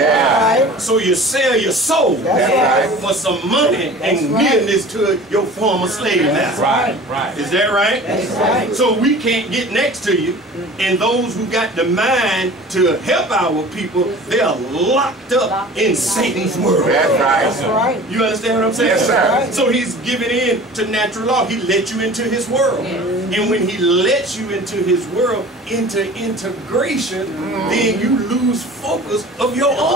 So you sell your soul right. for some money and nearness to your former slave master. Right. Right. Is that right? That's right. So we can't get next to you, and those who got the mind to help our people, they are locked up in Satan's world. That's That's right. right. You understand what I'm saying? Yes, sir. So he's giving in to natural law. He let you into his world. And when he lets you into his world, into integration, then you lose focus of your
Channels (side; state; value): both; normal; correlation 0.42